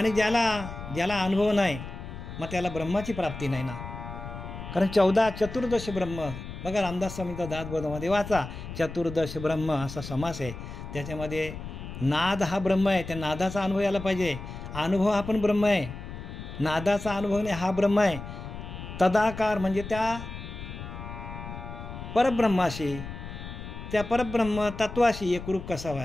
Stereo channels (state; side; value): noise; left; rumble, 10 dB below the sound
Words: ज्याला अनुभव नाही मग त्याला ब्रह्माची प्राप्ती नाही ना. कारण 14 चतुर्दश ब्रह्म बघा, रामदास स्वामींचा दासबोधामध्ये वाचा, चतुर्दश ब्रह्म असा समास आहे. त्याच्यामध्ये नाद हा ब्रह्म आहे. त्या नादाचा अनुभव यायला पाहिजे. अनुभव हा पण ब्रह्म आहे, नादाचा अनुभव नाही हा ब्रह्म आहे. तदाकार म्हणजे त्या परब्रह्माशी, त्या परब्रह्म तत्वाशी एकरूप कसा